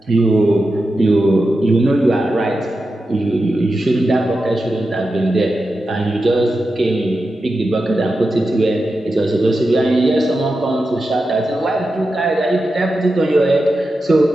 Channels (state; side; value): normal; both; correlation 0.90